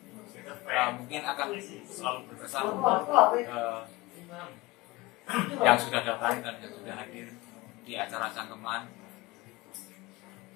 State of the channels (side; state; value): right; quieter; 20.7 dB